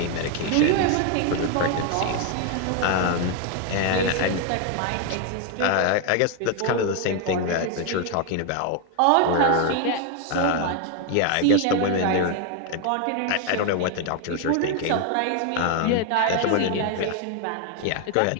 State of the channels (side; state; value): both; different; correlation 0.01